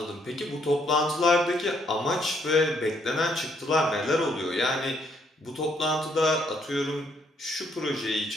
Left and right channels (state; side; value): normal; both; correlation 0.70